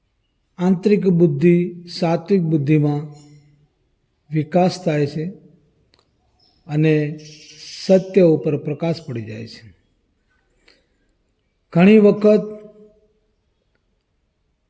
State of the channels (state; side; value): identical; both; correlation 1.00